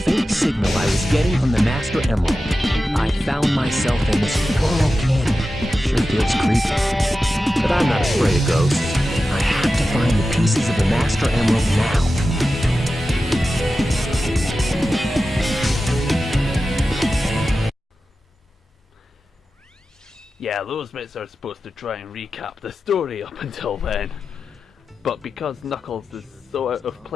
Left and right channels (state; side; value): normal; both; correlation 0.93